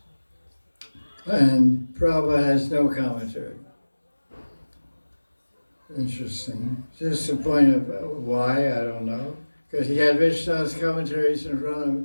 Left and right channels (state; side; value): inverted; both; correlation -1.00